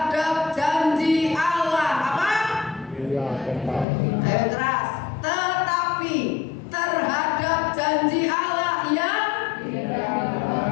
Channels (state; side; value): drops out; right; at 3.9 s